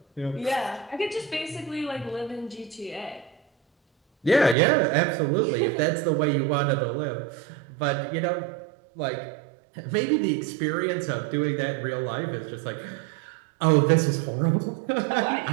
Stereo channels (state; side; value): drops out; left; at 4.5 s